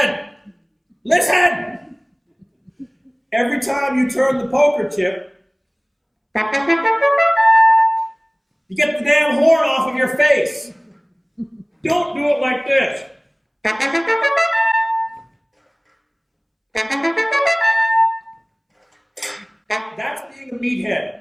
Listen! Every time you turn the poker chip, you get the damn horn off of your face. Don't do it like this. That's being a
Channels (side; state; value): both; identical; correlation 1.00